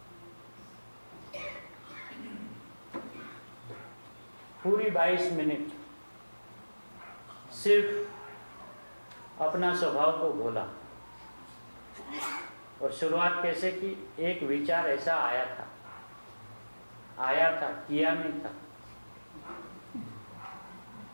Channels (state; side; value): inverted; both; correlation -1.00